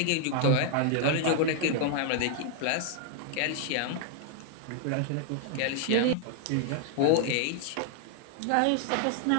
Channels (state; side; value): different; both; correlation 0.00